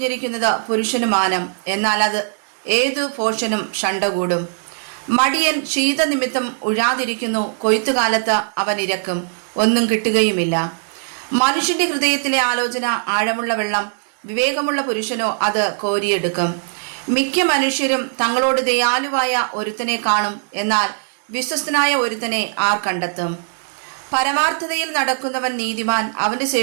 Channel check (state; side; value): silent; left; digital silence